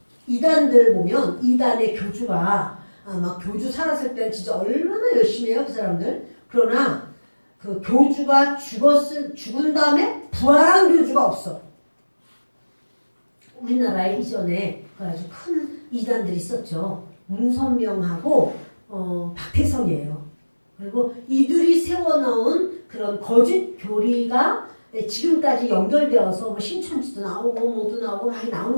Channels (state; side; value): inverted; both; correlation -1.00